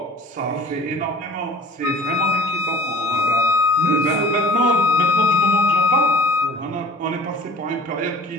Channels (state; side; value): normal; both; correlation 0.46